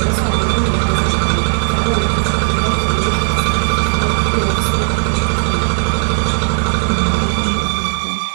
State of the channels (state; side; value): silent; left; digital silence